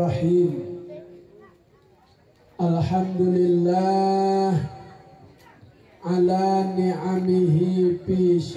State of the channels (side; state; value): both; identical; correlation 1.00